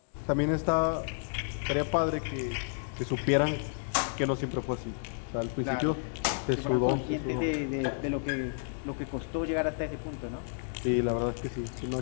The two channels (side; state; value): right; silent; digital silence